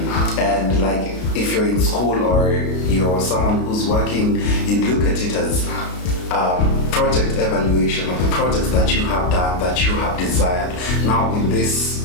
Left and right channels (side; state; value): right; late; 33 ms